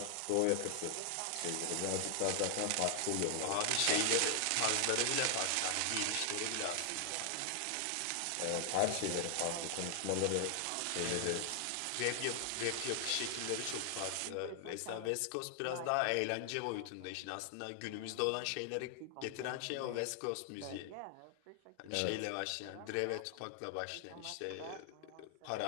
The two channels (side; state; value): both; different; correlation 0.00